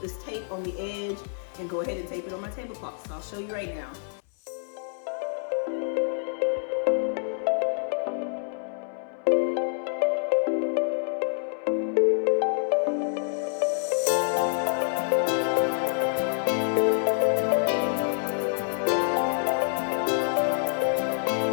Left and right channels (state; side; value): silent; right; 60 dB below the other